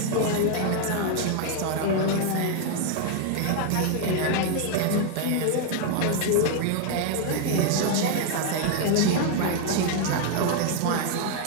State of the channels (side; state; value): both; different; correlation 0.00